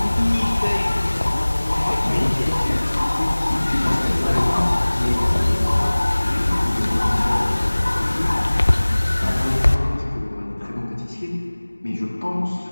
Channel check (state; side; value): inverted; both; correlation -1.00